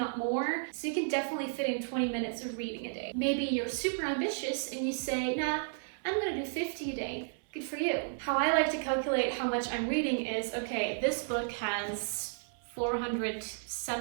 more. So you can definitely fit in 20 minutes of reading a day. Maybe you're super ambitious and you say, nah, I'm gonna do 50 a day. Good for you. How I like to calculate how much I'm reading is, okay, this book has 400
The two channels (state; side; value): silent; left; 56 dB below the other